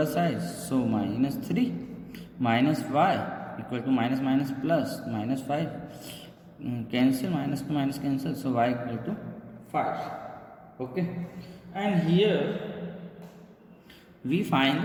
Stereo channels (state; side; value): identical; both; correlation 1.00